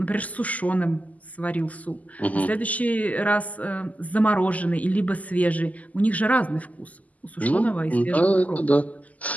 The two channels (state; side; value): late; right; 0.075 ms